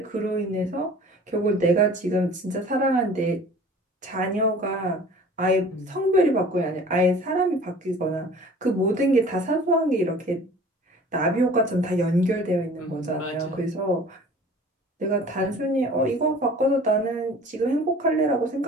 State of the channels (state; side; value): normal; both; correlation 0.46